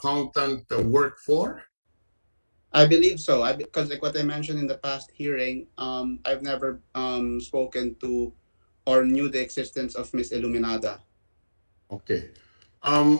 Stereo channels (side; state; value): both; inverted; correlation -1.00